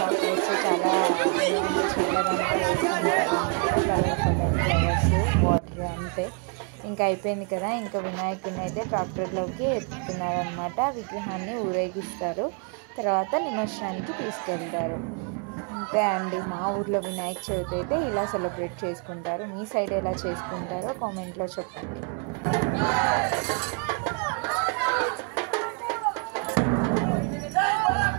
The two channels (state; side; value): quieter; left; 36.9 dB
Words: చాలా వాటర్ అంతే. ఇంకా అయిపోయింది కదా. ఇంకా వినాయకుడిని అయితే ట్రాక్టర్లోకి ఎత్తుతున్నారనమాట. విగ్రహాన్ని ఊరేగిస్తారు, తర్వాత నిమజ్జనానికి తీసుకెళ్తారు. అంతే అండి. మా ఊర్లో వినాయక చవితి అయితే ఇలా సెలబ్రేట్ చేసుకుంటారు. మీ సైడ్ ఎలా చేసుకుంటారో కామెంట్లో చెప్పండి.